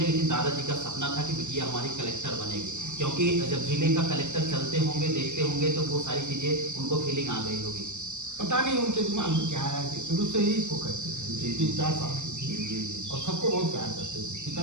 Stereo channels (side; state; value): left; late; 0.84 ms